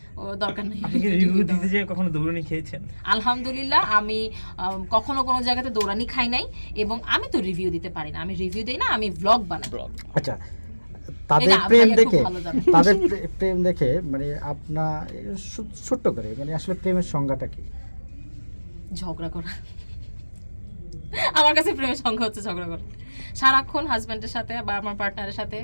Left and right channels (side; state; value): both; inverted; correlation -1.00